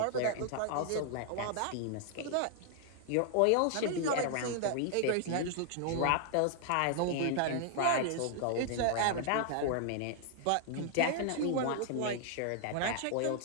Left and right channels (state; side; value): different; both; correlation 0.00